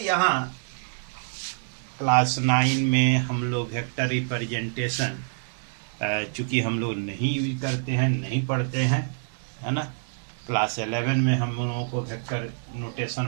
क्लास 9 में हम लोग वेक्टर रिप्रेजेंटेशन चूंकि हम लोग नहीं यूज करते हैं, नहीं पढ़ते हैं, है ना। क्लास 11 में हम लोगों को वेक्टर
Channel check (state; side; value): silent; left; digital silence